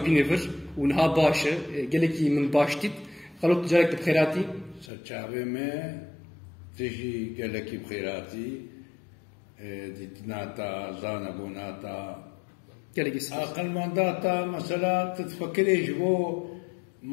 و نها باشه گلکی من باشتید خلوت جارك بخيراتي سرچاوه ما تجي گلکی بخيراتي ديتناتا زانبوناتا أقل مانداتا مثلا تتفكري جبو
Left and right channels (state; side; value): drops out; right; at 4.9 s